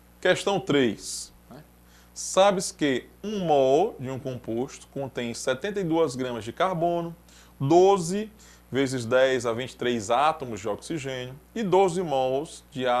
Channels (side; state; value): both; identical; correlation 1.00